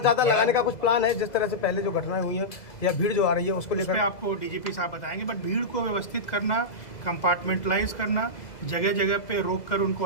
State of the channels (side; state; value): right; late; 2.0 ms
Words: ज़्यादा लगाने का कुछ प्लान है, जिस तरह से पहले जो घटनाएं हुई हैं या भीड़ जो आ रही है उसको लेकर? आपको डीजीपी साहब बताएंगे, बट भीड़ को व्यवस्थित करना, कंपार्टमेंटलाइज करना, जगह जगह पे रोक कर उनको